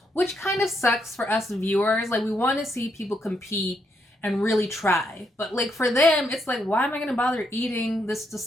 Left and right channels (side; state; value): both; normal; correlation 0.78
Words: which kind of sucks for us viewers. Like, we want to see people compete and really try. But, like, for them, it's like, why am I going to bother eating this